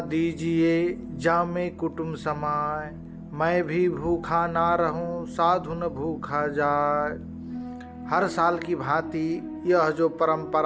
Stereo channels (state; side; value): identical; both; correlation 1.00